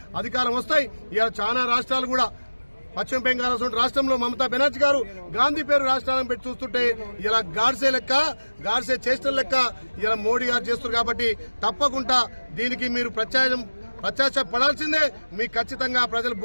అధికారం వస్తాయి. ఇలా చాలా రాష్ట్రాలు కూడా పశ్చిమ బెంగాల్ రాష్ట్రంలో మమతా బెనర్జీ గారు గాంధీ పేరు రాష్ట్రాలను పెట్టి చూస్తుంటే ఇలా గాడ్సే చేష్టల లెక్క ఇలా మోడీ గారు చేస్తున్నారు. కాబట్టి తప్పకుండా దీనికి మీరు ప్రత్యాశపడాల్సిందే. మీకు ఖచ్చితంగా ప్రజలు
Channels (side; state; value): both; inverted; correlation -1.00